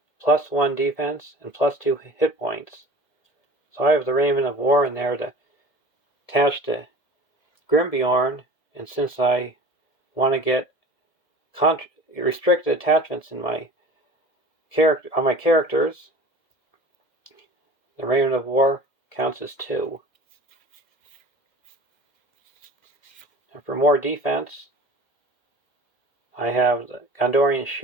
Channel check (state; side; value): late; right; 2.1 ms